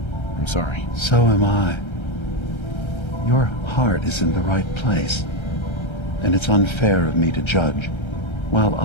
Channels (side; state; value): right; late; 1.3 ms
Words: I'm sorry. So am I. Your heart is in the right place, and it's unfair of me to judge, while